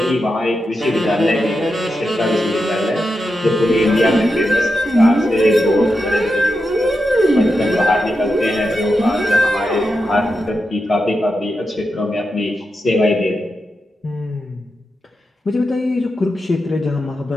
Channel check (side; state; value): both; normal; correlation 0.88